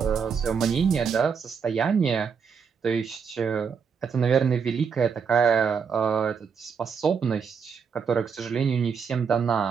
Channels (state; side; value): quieter; left; 6.3 dB